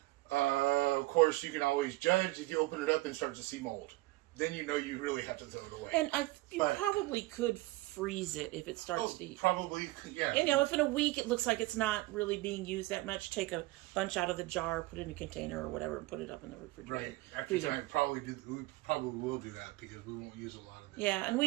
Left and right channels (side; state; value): left; quieter; 20.0 dB